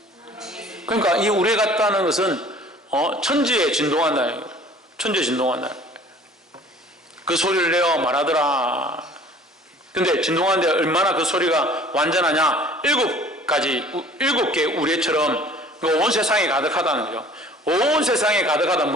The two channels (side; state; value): both; normal; correlation 0.50